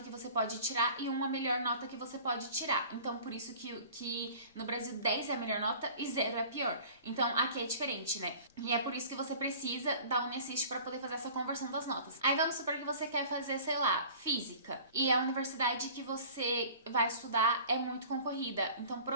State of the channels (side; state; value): both; inverted; correlation -0.44